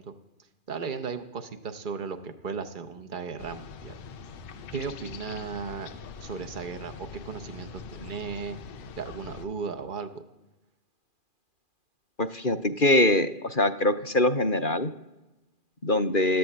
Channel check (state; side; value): late; right; 2.4 ms